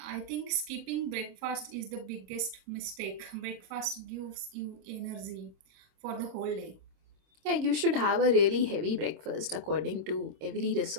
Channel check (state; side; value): late; left; 26 ms